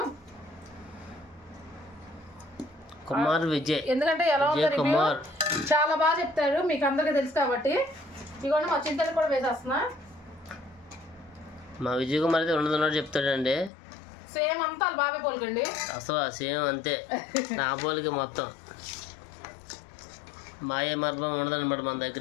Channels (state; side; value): drops out; right; at 13.7 s